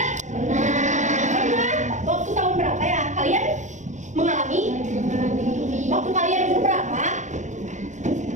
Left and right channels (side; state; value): left; late; 0.35 ms